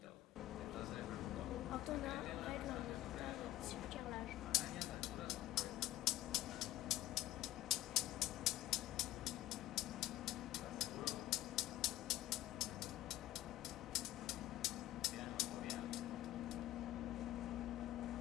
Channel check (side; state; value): right; quieter; 15.2 dB